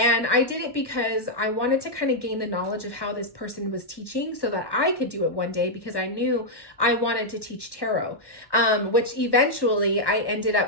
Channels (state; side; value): late; right; 1.1 ms